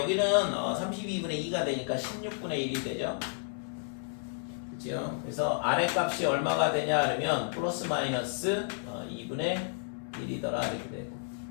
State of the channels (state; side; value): silent; right; 57 dB below the other